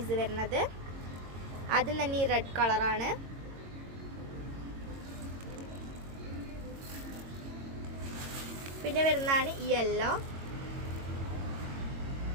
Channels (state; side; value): late; left; 22 ms